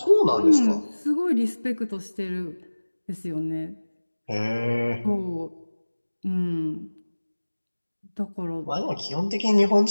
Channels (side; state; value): both; inverted; correlation -1.00